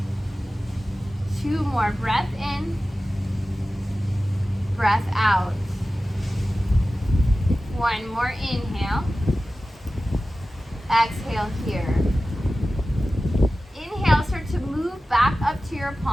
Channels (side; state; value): both; normal; correlation 0.95